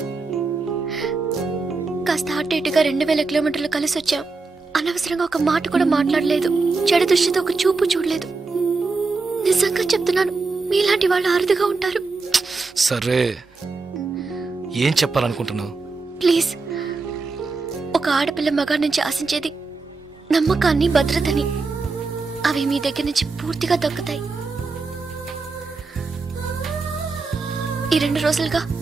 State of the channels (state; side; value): quieter; left; 4.0 dB